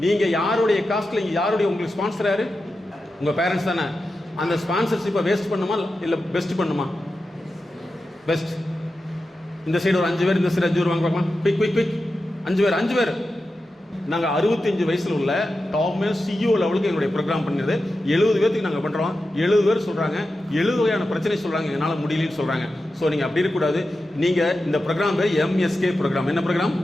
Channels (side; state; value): both; normal; correlation 0.91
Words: நீங்க யாருடைய காஸ்ட்ல, யாருடைய உங்களுக்கு ஸ்பான்சர் யாரு? உங்க பேரண்ட்ஸ் தானே. அந்த ஸ்பான்சர்ஷிப்பை வேஸ்ட் பண்ணுமா இல்ல பெஸ்ட் பண்ணுமா? பெஸ்ட். இந்த சைடு ஒரு 5 பேர், இந்த சைடு 5 பேர் வாங்க பார்க்கலாம். குயிக் 5 பேர் நாங்கள் 65 வயசில் உள்ள டாப்மே சிஇஓ லெவலுக்கு எங்களுடைய ப்ரோக்ராம் பண்ணியது 70 பேருக்கு நாங்கள் பண்ணுறோம். 70 பேர் சொல்கிறாங்க 70 வகையான பிரச்சனை சொல்கிறாங்க, என்னால் முடியலன்னு சொல்கிறாங்க. ஸோ நீங்கள் அப்படி இருக்கக்கூடாது. நீங்கள் இந்த ப்ரோக்ராம் பேர் எம்எஸ்கே ப்ரோக்ராம். என்ன ப்ரோக்ராம்?